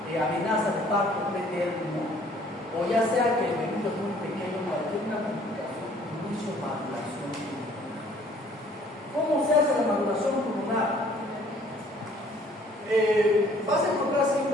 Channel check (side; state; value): both; normal; correlation 0.58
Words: de parto pretérmino, o ya sea que el bebé es muy pequeño, para tener una complicación, inicio maduración pulmonar. ¿Cómo se hace la maduración pulmonar? Vas a encontrar